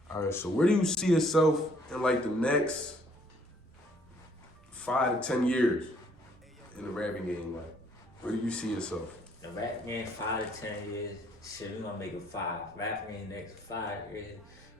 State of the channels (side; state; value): right; noise; rumble, 26 dB below the sound